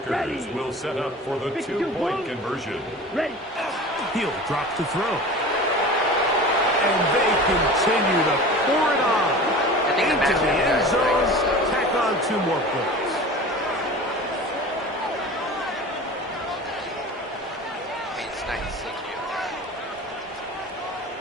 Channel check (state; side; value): normal; both; correlation 0.36